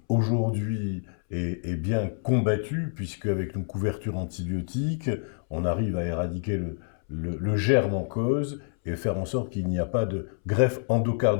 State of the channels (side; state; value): right; silent; 60 dB below the other